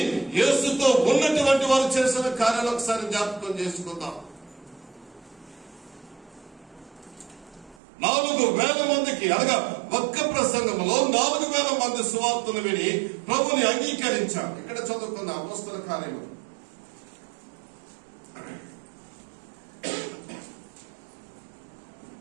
యేసుతో ఉన్నటువంటి వారు చేసిన కార్యాలు ఒకసారి జ్ఞాపకం చేసుకుందాం. 4,000 మందికి అనగా ఒక్క ప్రసంగంలో 4,000 మంది సువార్తను విని ప్రభుని అంగీకరించారు. ఇక్కడ చదువుకున్న అపోస్తల కార్యము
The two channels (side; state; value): left; drops out; at 7.8 s